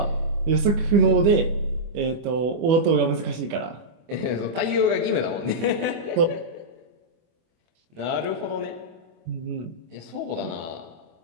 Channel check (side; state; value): left; late; 24 ms